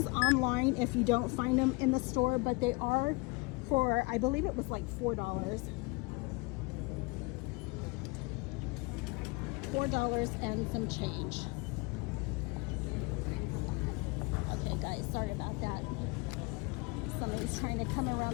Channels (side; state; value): right; quieter; 27.2 dB